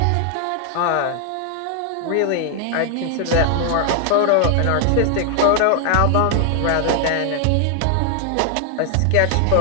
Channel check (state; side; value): different; both; correlation 0.00